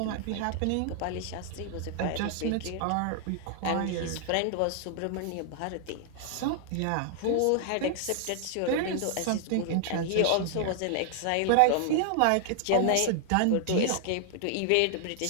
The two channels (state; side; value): different; both; correlation 0.00